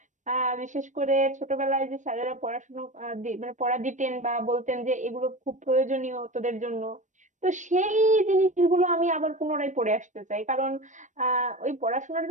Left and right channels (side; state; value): left; late; 0.35 ms